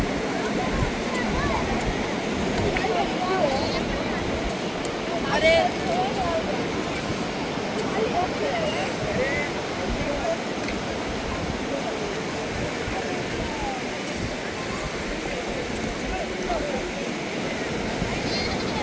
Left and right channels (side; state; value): both; identical; correlation 1.00